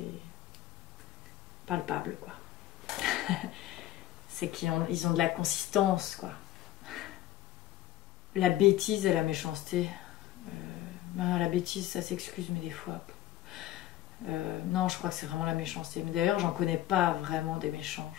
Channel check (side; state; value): right; quieter; 14.0 dB